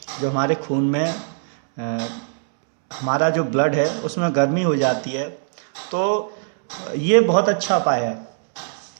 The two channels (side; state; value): left; silent; 65 dB below the other